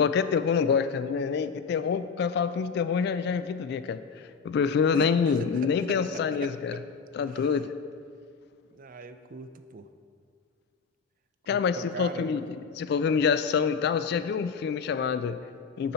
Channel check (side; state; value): right; quieter; 5.7 dB